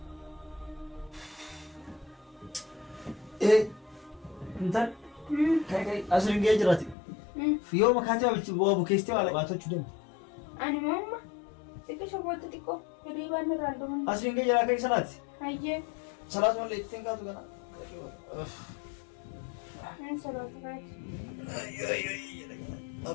Intal kai asiriin ga'ee jiraati. Yoo makaatee waa bukeessitee waa labaatachuu dandeenya. Ani mamma xiqqishoo booda xiqqoo hirriibaan irraan dhuman. Asiriin ga'ee jiraa kai sanaati. Ayyee. Salaat malee ittiin kaatu kana. Salaata kaati.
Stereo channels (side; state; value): right; drops out; at 7.0 s